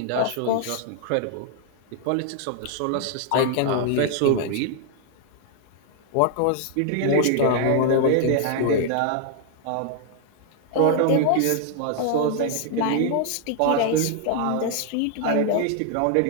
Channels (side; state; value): both; different; correlation 0.00